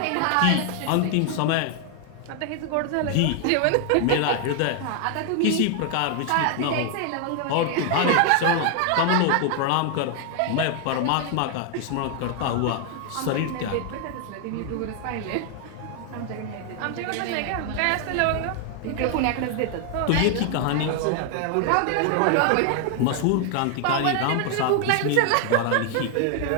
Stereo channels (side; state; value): both; different; correlation 0.00